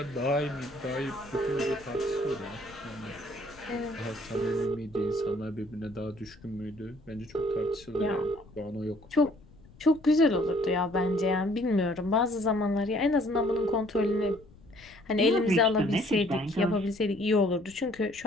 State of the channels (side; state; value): left; noise; rumble, 24 dB below the sound